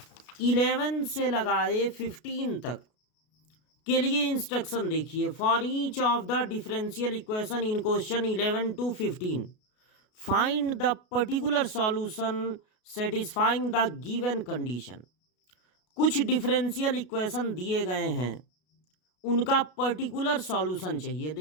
11 से लगाए 15 तक के लिए इंस्ट्रक्शन देखिए। For each of the differential equation in question 11 to 15 find the particular solution satisfying the given condition. कुछ डिफरेंशियल इक्वेशन दिए गए हैं, उनका पर्टिकुलर सॉल्यूशन चाहिए।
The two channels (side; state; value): right; late; 33 ms